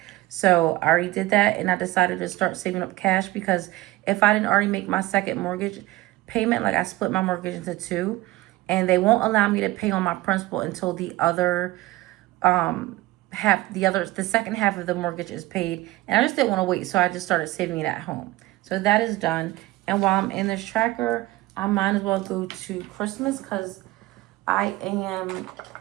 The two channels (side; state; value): left; quieter; 18.5 dB